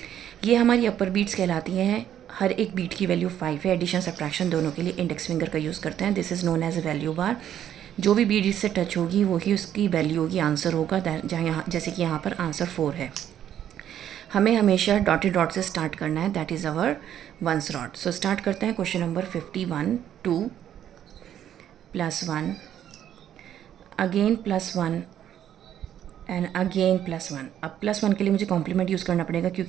ये हमारी अपर बीट्स कहलाती हैं। हर एक बीट की वैल्यू 5 है। एडिशन सब्ट्रैक्शन दोनों के लिए इंडेक्स फिंगर का यूज़ करते हैं। This is known as a value bar. जो भी बीट इससे टच होगी वही उसकी वैल्यू होगी, आंसर होगा। जहाँ यहाँ जैसे कि यहाँ पर आंसर 4 है। हमें हमेशा डॉटेड डॉट से स्टार्ट करना है, that is our once dot. So start करते हैं। Question number 51, 2 +1 again +1 and again +1। अब +1 के लिए मुझे कॉम्प्लीमेंट यूज़ करना पड़ेगा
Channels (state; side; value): quieter; left; 10.5 dB